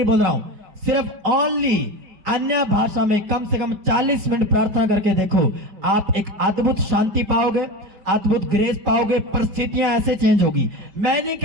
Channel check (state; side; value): late; left; 5.0 ms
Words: बोल रहा हूं, सिर्फ ओनली अन्य भाषा में कम से कम 40 मिनट प्रार्थना करके देखो, आप एक अद्भुत शांति पाओगे, अद्भुत ग्रेस पाओगे, परिस्थितियां ऐसे चेंज होगी। मैं नहीं